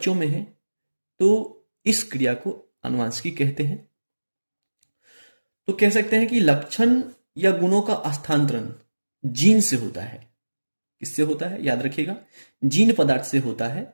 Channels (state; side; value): inverted; both; correlation -1.00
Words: में है तो इस क्रिया को आनुवंशिकी कहते हैं। तो कह सकते हैं कि लक्षण या गुणों का हस्तांतरण जीन से होता है। किससे होता है? याद रखिएगा, जीन पदार्थ से होता है